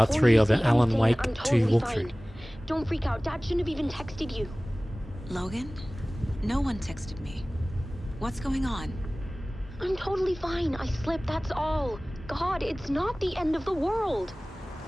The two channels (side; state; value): both; normal; correlation 0.98